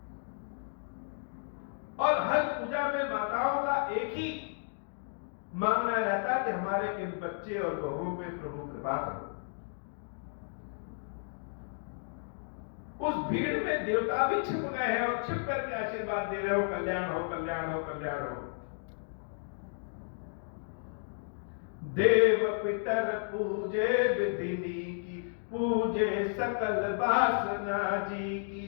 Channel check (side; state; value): right; silent; digital silence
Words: और हर पूजा में माताओं का एक ही मांगना रहता कि हमारे इन बच्चे और बहुओं पे प्रभु कृपा करो। उस भीड़ में देवता भी छिप गए हैं और छिप करके आशीर्वाद दे रहे हो, कल्याण हो, कल्याण हो, कल्याण हो। देव पितर पूजे विधिनी की, पूजे सकल वासना जी की,